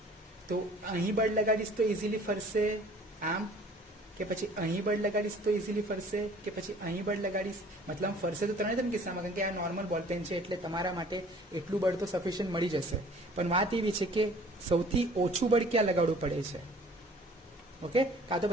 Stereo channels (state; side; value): normal; both; correlation 0.52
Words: તો અહીં બળ લગાડીશ તો ઇઝીલી ફરશે આમ, કે પછી અહીં બળ લગાડીશ તો ઇઝીલી ફરશે, કે પછી અહીં બળ લગાડીશ. મતલબ ફરશે તો 3 કિસ્સામાં, કારણ કે આ નોર્મલ બોલપેન છે એટલે તમારા માટે એટલું બળ તો સફિશિયન્ટ મળી જશે. પણ વાત એવી છે કે સૌથી ઓછું બળ ક્યાં લગાડવું પડે છે. ઓકે, કાં તો